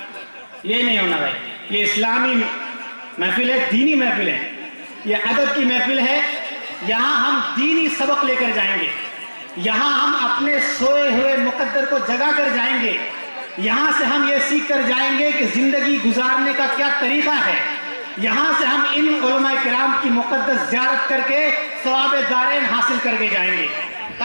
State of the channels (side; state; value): both; inverted; correlation -1.00